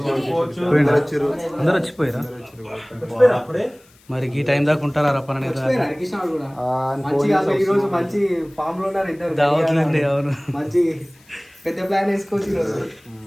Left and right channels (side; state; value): left; noise; hiss, 30 dB below the sound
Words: అందరు వచ్చిపోయారా మరి ఈ టైం దాకా ఉంటారా రప్పన ఈరోజు మంచి ఫామ్ లో ఉన్నారు ఇద్దరు దావట్లండి అవును మంచి పెద్ద ప్లాన్ వేసుకోవచ్చు ఈరోజు